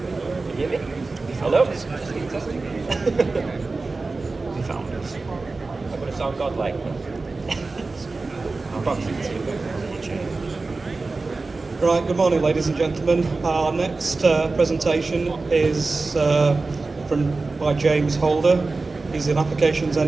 Can you hear me? Hello? Just testing. We found this. I'm going to sound godlike. Right, good morning ladies and gentlemen. Our next presentation is by James Holder. He's an applications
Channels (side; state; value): left; quieter; 3.7 dB